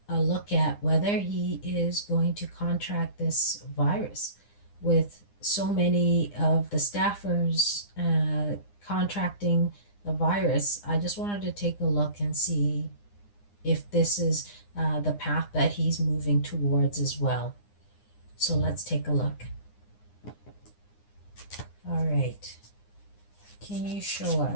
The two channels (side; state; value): right; late; 9.8 ms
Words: a look at whether he is going to contract this virus, with so many of the staffers contracting the virus. I just wanted to take a look and see if this is the path that he's moving towards as well. So let's take a look. All right. Can you show